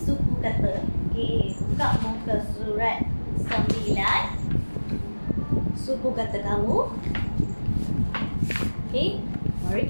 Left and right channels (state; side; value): inverted; both; correlation -1.00